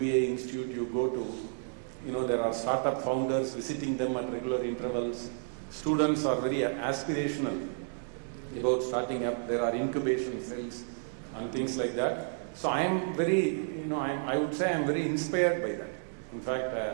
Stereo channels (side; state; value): left; silent; digital silence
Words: institute you go to, there are startup founders visiting them at regular intervals. Students are very aspirational about starting up. There are incubation cells and things like that. So I am very, I would say I am very inspired by that. In